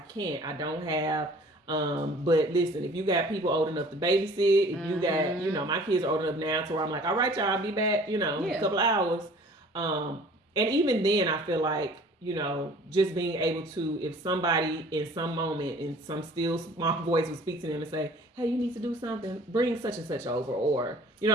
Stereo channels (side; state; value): both; normal; correlation 0.50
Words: don't have. But listen, if you got people old enough to babysit, if you got, my kids are old enough now to where I'm like, all right, y'all, I'll be back, in a couple of hours. And even then, I feel like, just being able to, if somebody in some moment in some still small voice would speak to them and say, hey, you need to do something, bring such and such over, or, you know